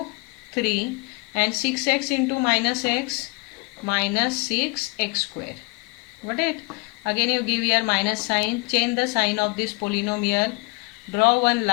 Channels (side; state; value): right; quieter; 28.6 dB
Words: 3, and 6x into minus x, minus 6x square. Got it? Again you give here minus sign, change the sign of this polynomial, draw one